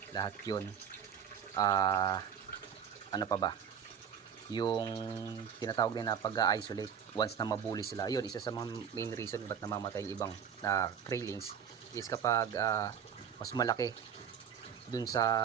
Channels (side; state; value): left; quieter; 7.9 dB